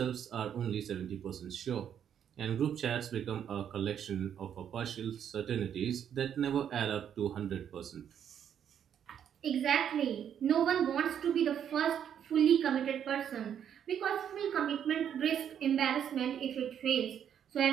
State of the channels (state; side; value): quieter; left; 9.0 dB